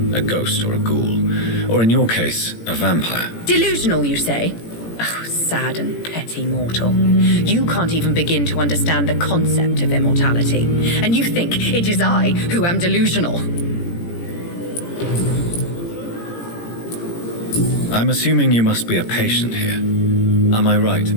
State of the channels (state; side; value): late; right; 17 ms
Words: a ghost or a ghoul, or in your case, a vampire. Delusional, you say? Oh, sad and petty mortal. You can't even begin to understand the concept of immortality. And you think it is I who am delusional. I'm assuming you must be a patient here. Am I right,